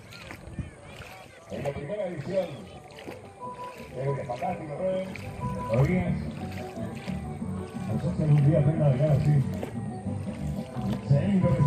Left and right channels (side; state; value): both; identical; correlation 1.00